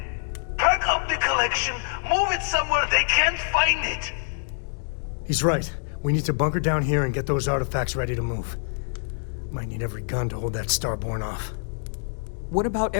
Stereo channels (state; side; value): silent; right; digital silence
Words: Pack up the collection, move it somewhere they can't find it! He's right. We need to bunker down here and get those artifacts ready to move. Might need every gun to hold that Starborn off. What about